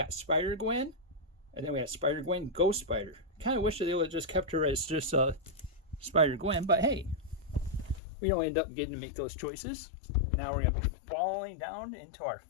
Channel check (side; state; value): right; drops out; at 8.0 s